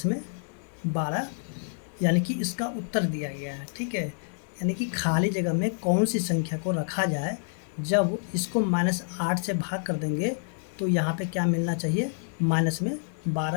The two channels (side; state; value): right; silent; digital silence